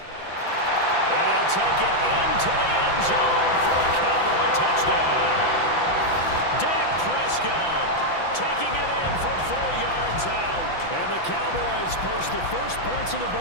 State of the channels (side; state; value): right; late; 5.9 ms